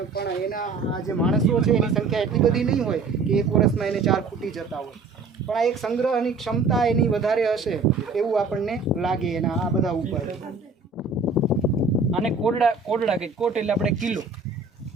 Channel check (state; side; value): quieter; left; 4.2 dB